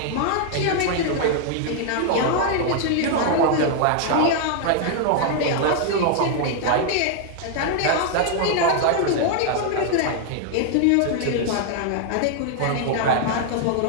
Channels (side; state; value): both; different; correlation 0.00